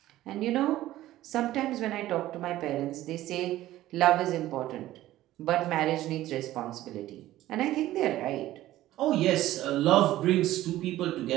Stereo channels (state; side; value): quieter; left; 14.9 dB